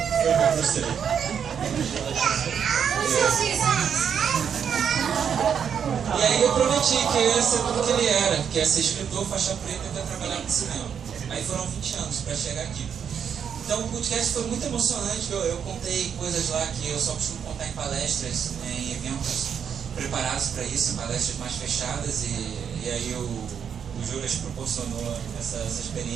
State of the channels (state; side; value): quieter; left; 7.7 dB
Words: o Bruce Lee. E aí eu prometi que eu ia ser tudo que ele era, que ia ser escritor, faixa preta e ia trabalhar no cinema. Aí foram 20 anos pra chegar aqui. Então o podcast foi muito emocionante, eu contei coisas lá que eu só costumo contar em palestras, em eventos preparados para isso, em palestras mais fechadas, e aí o Juras proporcionou essa